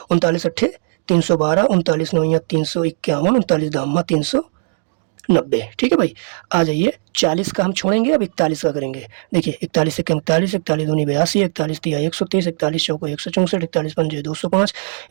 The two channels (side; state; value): left; silent; digital silence